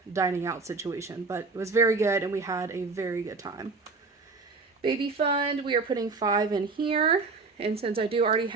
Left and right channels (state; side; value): quieter; left; 4.1 dB